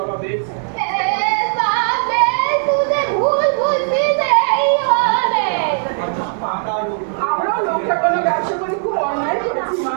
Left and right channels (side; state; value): left; silent; digital silence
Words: আমরাও লোকটা কোনো ব্যবসা করে খুব অন্যায় করেছি মা।